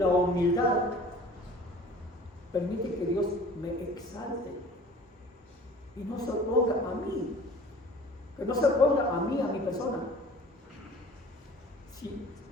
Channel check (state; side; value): normal; both; correlation 0.46